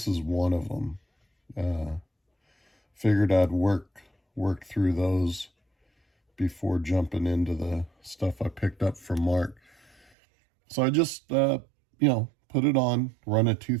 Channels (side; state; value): left; drops out; at 10.0 s